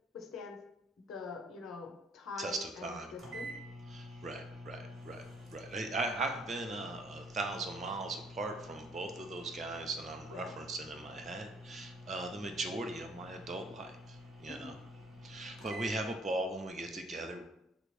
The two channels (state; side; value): normal; both; correlation 0.61